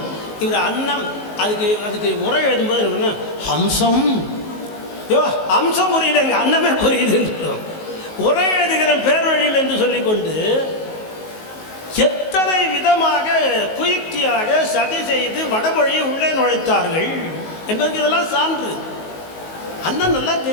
இவர் அன்னம் அதுக்கு அதுக்கு உரை எழுதும்போது என்ன ஹம்சம், யோ ஹம்சம் புரியல, எங்கள் அன்னமே புரியுதுன்னு உரை எழுதுகிற பேர் வழியில் என்று சொல்லிக்கொண்டு எத்தனை விதமாக குயுக்தியாக சதி செய்து வடமொழியை உள்ளே நுழைத்தார்கள் என்பதற்கு இதெல்லாம் சான்று. அண்ணன் நல்லா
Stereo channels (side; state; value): right; late; 19 ms